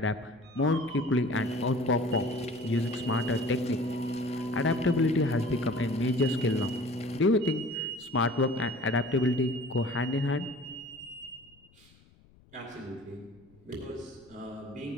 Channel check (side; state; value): left; noise; rumble, 29 dB below the sound